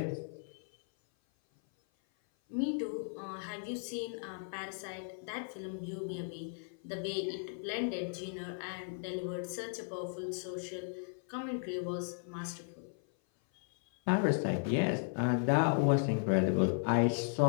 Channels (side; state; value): right; silent; 54 dB below the other